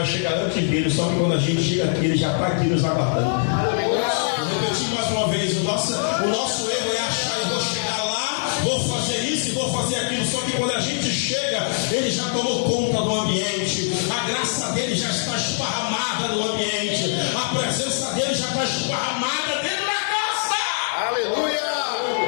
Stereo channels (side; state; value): right; silent; digital silence